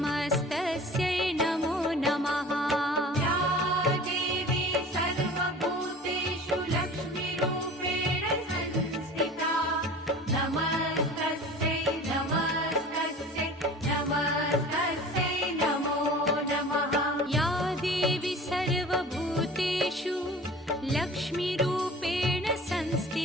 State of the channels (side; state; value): both; normal; correlation 0.41